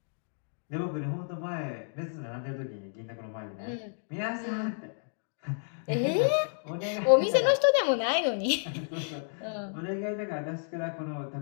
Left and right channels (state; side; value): silent; right; digital silence